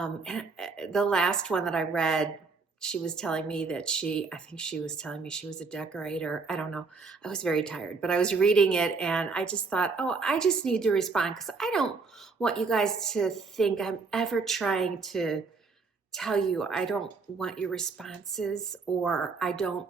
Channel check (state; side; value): quieter; left; 4.5 dB